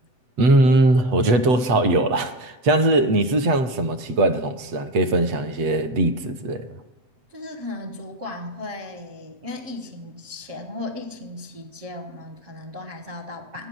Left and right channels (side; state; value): left; late; 8.1 ms